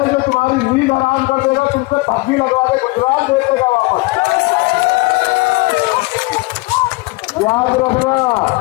जो तुम्हारी नींद हराम कर देगा, तुमसे धक्की लगवा के गुजरात दे देगा वापस। याद रखना,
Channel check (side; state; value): right; quieter; 23.6 dB